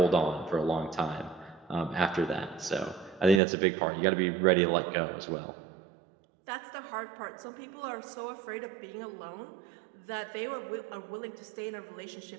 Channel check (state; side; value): drops out; left; at 3.4 s